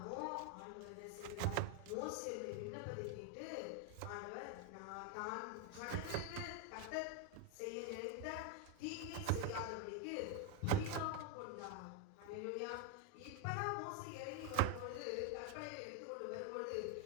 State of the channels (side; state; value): both; different; correlation 0.01